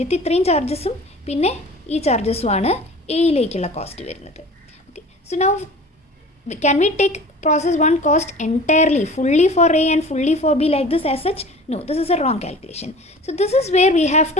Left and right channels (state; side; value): normal; both; correlation 0.41